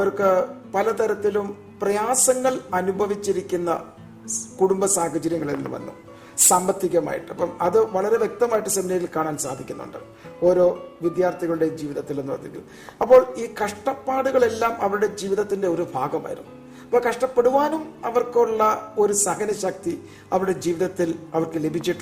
പലതരത്തിലും പ്രയാസങ്ങൾ അനുഭവിച്ചിരിക്കുന്ന കുടുംബ സാഹചര്യങ്ങളിൽ നിന്ന് വന്നു, സാമ്പത്തികമായിട്ട്. അപ്പം അത് വളരെ വ്യക്തമായിട്ട് സെമിനാരിയിൽ കാണാൻ സാധിക്കുന്നുണ്ട് ഓരോ വിദ്യാർത്ഥികളുടെ ജീവിതത്തിൽ എന്ന് പറഞ്ഞിരിക്കും. അപ്പോൾ ഈ കഷ്ടപ്പാടുകളെല്ലാം അവരുടെ ജീവിതത്തിന്റെ ഒരു ഭാഗമായിരുന്നു. അപ്പോൾ കഷ്ടപ്പെടുവാനും അവർക്കുള്ള ഒരു സഹനശക്തി അവരുടെ ജീവിതത്തിൽ അവർക്ക്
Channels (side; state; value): both; identical; correlation 1.00